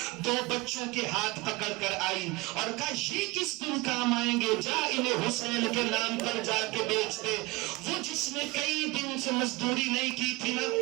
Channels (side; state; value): left; quieter; 23.1 dB